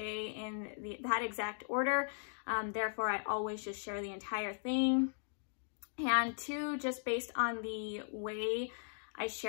in that exact order. Therefore, I always just share the entire thing. And 2, just based on the way I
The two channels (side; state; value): right; silent; digital silence